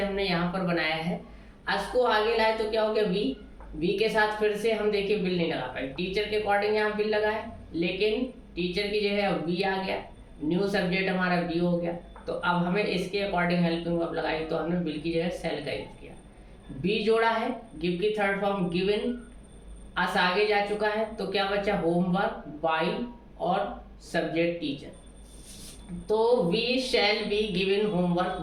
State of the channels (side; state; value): both; identical; correlation 1.00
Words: हमने यहाँ पर बनाया है। अस को आगे लाए तो क्या हो गया वी, वी के साथ फिर से हम देखिए बिल नहीं लगा पाए, टीचर के अकॉर्डिंग यहाँ बिल लगाए, लेकिन टीचर की जगह वी आ गया, न्यू सब्जेक्ट हमारा बी हो गया। तो अब हमें इसके अकॉर्डिंग हेल्पिंग वर्ब लगाई, तो हमने बिल की जगह सेल का यूज किया। बी जोड़ा है, गिव की थर्ड फॉर्म गिवन, अस आगे जा चुका है, तो क्या बचा होमवर्क बाई और सब्जेक्ट टीचर। तो we shall be given homework